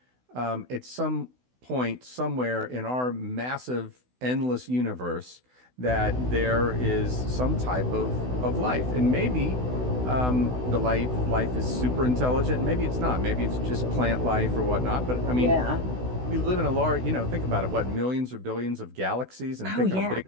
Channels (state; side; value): late; left; 16 ms